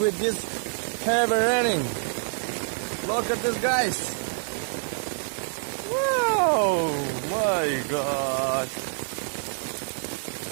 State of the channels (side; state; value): left; silent; 60 dB below the other